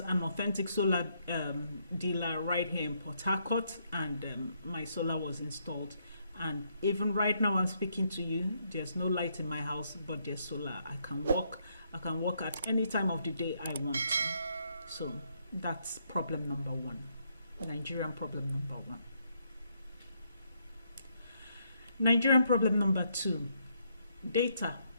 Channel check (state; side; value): inverted; both; correlation -0.74